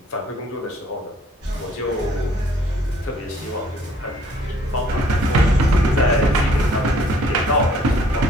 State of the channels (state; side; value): normal; both; correlation 0.60